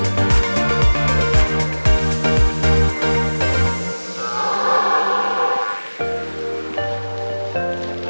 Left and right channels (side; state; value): both; inverted; correlation -1.00